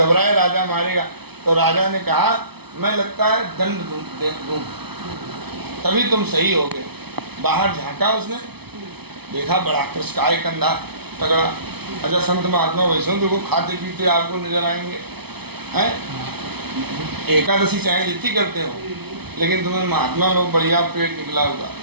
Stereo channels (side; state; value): left; late; 0.98 ms